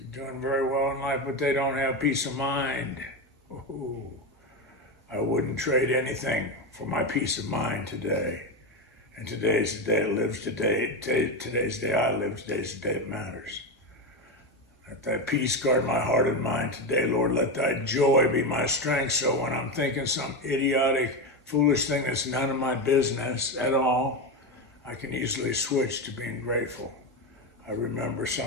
doing very well in life, but they don't have peace of mind. Ooh, I wouldn't trade anything for my peace of mind today. And today's the day it lives today. Today's the day I live. Today's the day it matters. Let thy peace guard my heart and mind today, Lord. Let thy joy be my strength. So when I'm thinking some idiotic, foolish thing that's none of my business at all, I can easily switch to being grateful. I remember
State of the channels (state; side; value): normal; both; correlation 0.15